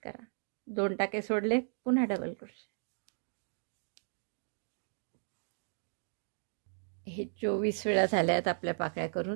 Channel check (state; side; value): silent; left; digital silence